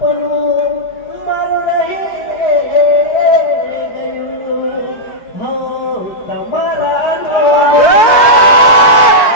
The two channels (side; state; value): right; late; 4.5 ms